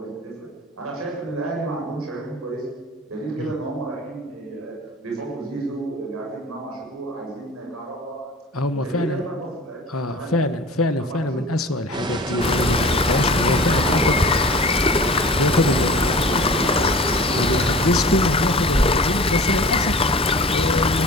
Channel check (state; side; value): normal; both; correlation 0.40